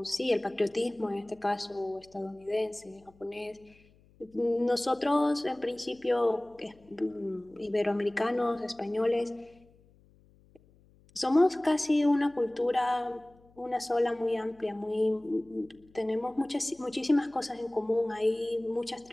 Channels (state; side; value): noise; left; hum, 29 dB below the sound